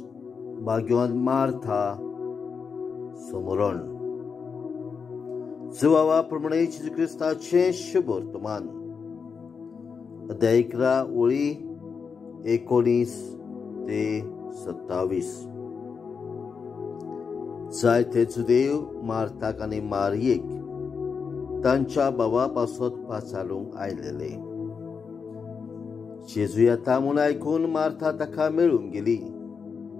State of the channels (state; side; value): quieter; right; 5.7 dB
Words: भाग्यवान मार्था समरण प्रमाणे जेजू क्रिस्ताचे शुभ वर्तमान अध्याय 11 ओळी 19 ते 27. जायते जुदेव मार्थाक आनी मारियेक तांच्या भावापासत पाचारूंक आयलेले. जेजू येता म्हूण आयकून मार्था ताका मेळूंक गेली,